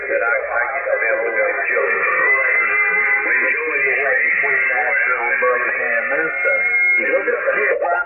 I used to be able to go to children. Between Nashville and Birmingham, look at the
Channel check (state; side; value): normal; both; correlation 0.96